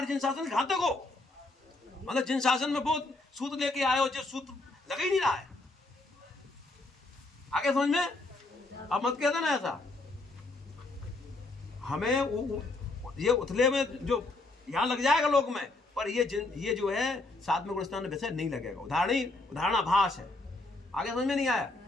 जिन शासन घातक हो, मतलब जिन शासन में बहुत सूत्र लेके आए हो, जो सूत्र लग ही नहीं रहा है। आगे समझ में? अब मत कहता ना ऐसा। हमें ये उथले में जो यहाँ लग जाएगा लोक में, पर ये जो है साथ में गुणस्थान में वैसे नहीं लगेगा। उदाहरणाभास है। आगे समझ में नहीं आया?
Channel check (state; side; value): quieter; right; 3.0 dB